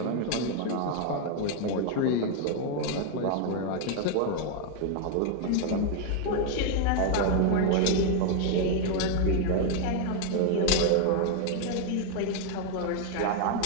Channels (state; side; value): different; both; correlation 0.01